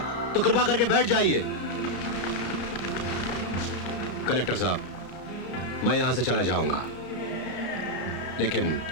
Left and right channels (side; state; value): right; late; 33 ms